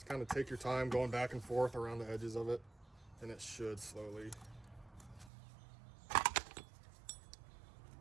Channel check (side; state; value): left; drops out; at 5.3 s